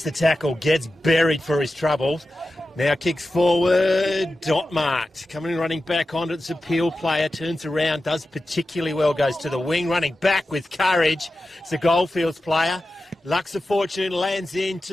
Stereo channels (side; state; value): both; normal; correlation 0.93